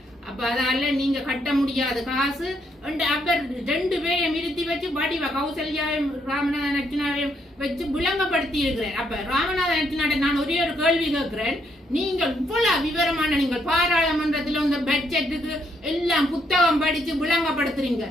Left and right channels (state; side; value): normal; both; correlation 0.74